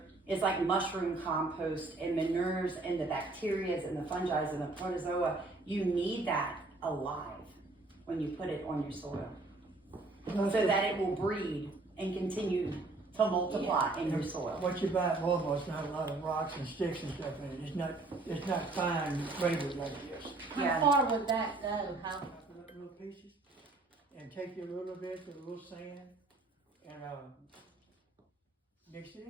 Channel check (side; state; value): left; quieter; 3.3 dB